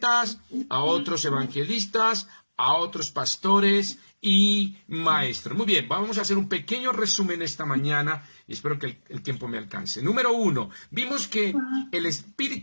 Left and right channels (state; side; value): inverted; both; correlation -1.00